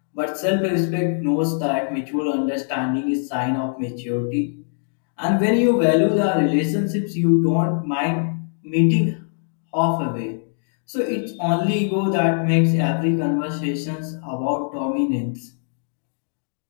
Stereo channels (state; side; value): silent; right; digital silence